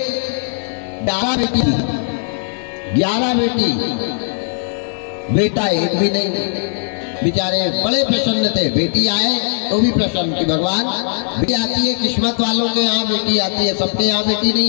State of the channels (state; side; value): silent; right; 60 dB below the other